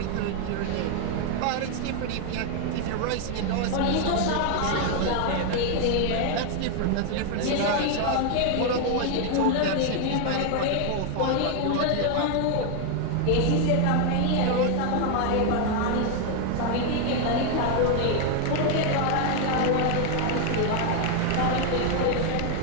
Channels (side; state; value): both; different; correlation 0.01